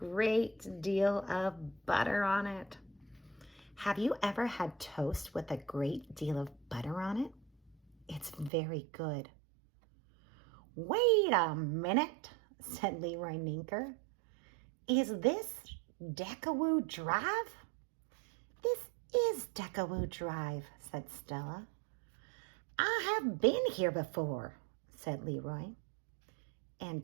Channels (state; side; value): drops out; left; at 8.5 s